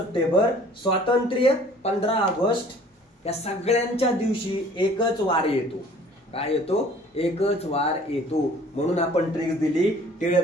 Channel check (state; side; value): normal; both; correlation 0.52